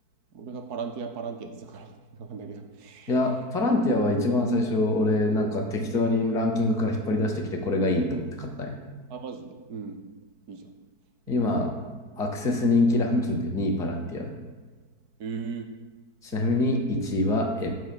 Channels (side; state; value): left; late; 4.6 ms